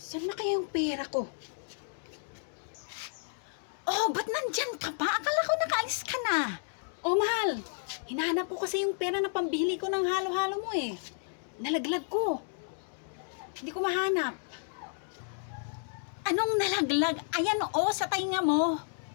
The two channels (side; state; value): right; silent; digital silence